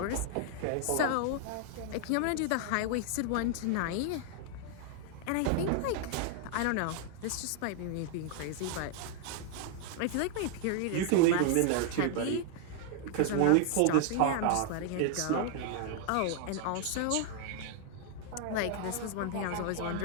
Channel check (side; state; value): both; different; correlation 0.00